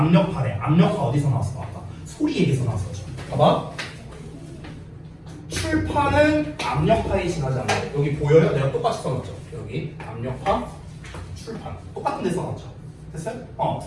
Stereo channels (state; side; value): identical; both; correlation 1.00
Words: 압력파 어디서 나왔어? 아까 소리 얘기에서 나왔었죠. 봐봐. 출판은 압력파에 지나지 않는다. 여기 보여요? 내가 똑같이 써놨죠. 여기 압력파 출판 똑같은 데 써놨죠. 됐어요?